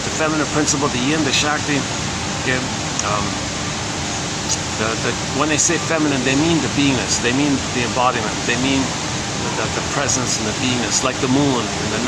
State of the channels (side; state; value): both; identical; correlation 1.00